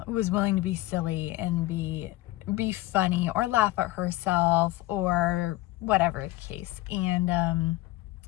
was willing to be silly and be funny or laugh at herself or whatever the case. And,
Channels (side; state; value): right; quieter; 18.0 dB